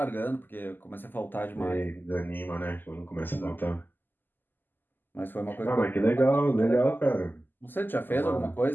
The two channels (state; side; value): late; right; 0.091 ms